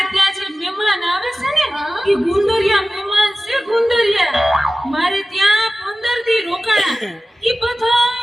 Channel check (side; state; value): both; normal; correlation 0.96